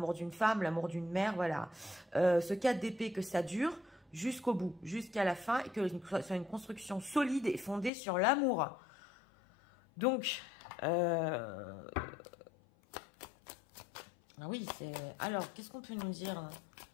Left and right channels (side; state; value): right; drops out; at 7.9 s